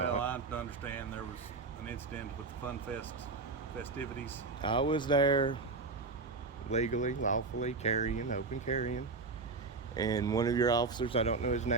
not. I understand there was an incident with the FunFest festivities. I was there legally, lawfully open carrying, and one of your officers, I don't know his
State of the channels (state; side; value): quieter; left; 4.0 dB